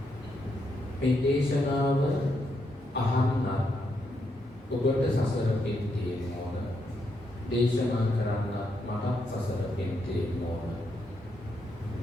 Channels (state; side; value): normal; both; correlation 0.80